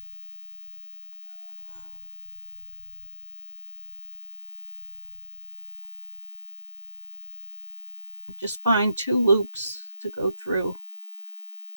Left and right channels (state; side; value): inverted; both; correlation -0.82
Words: Just find 2 loops to go through.